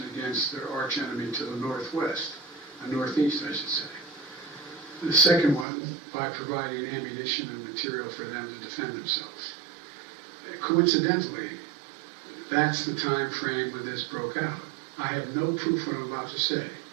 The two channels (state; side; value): drops out; left; at 5.7 s